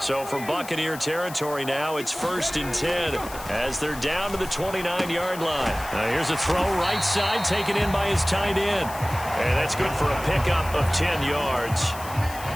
from Buccaneer territory now, it's 1st and 10 as they're down to the 29-yard line. Now here's a throw right side, taken in by his tight end. And that's good for a pickup of 10 yards.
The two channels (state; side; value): noise; left; hiss, 14 dB below the sound